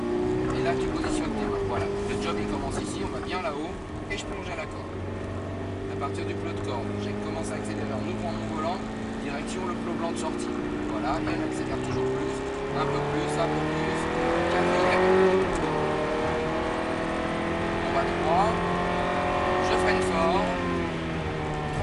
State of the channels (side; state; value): both; identical; correlation 1.00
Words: Et là tu positionnes tes mains. Voilà, le job il commence ici, on va bien là-haut et je plonge à la corde. À partir du plot de corde, j'ai commencé à accélérer en ouvrant mon volant, direction le plot blanc de sortie. Voilà, et on accélère toujours plus, un peu plus, un peu plus. Quatrième. On va 3. Je freine fort.